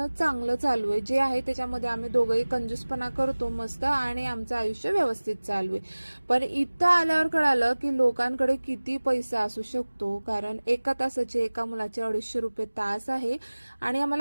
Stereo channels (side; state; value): both; inverted; correlation -1.00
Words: चांगलं चालू आहे. जे आहे त्याच्यामध्ये आम्ही दोघंही कंजूसपणा करतो मस्त आणि आमचं आयुष्य व्यवस्थित चालू आहे. पण इथं आल्यावर कळालं की लोकांकडे किती पैसा असू शकतो. कारण एका तासाचे एका मुलाचे 250 रुपये तास आहे आणि